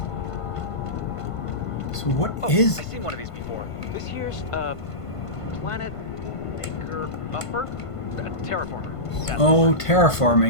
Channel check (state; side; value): late; right; 1.5 ms